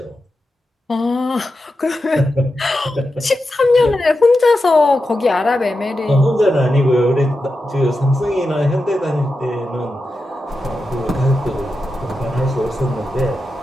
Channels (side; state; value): both; normal; correlation 0.90